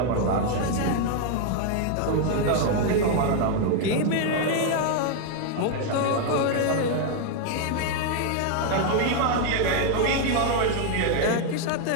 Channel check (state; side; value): different; both; correlation 0.01